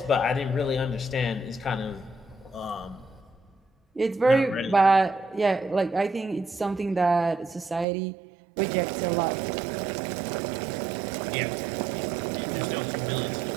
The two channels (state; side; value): drops out; left; at 7.9 s